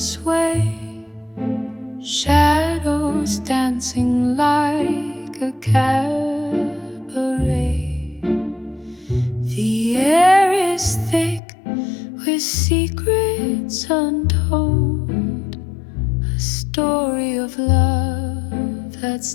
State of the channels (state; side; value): drops out; right; at 11.4 s